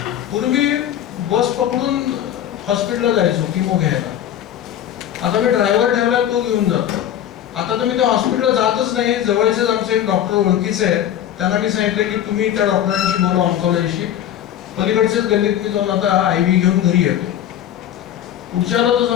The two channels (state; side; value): quieter; right; 10.9 dB